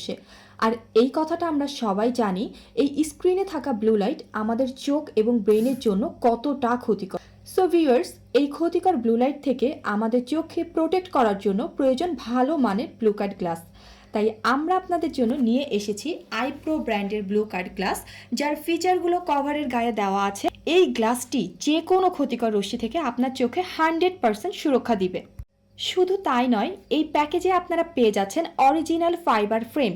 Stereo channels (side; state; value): both; identical; correlation 1.00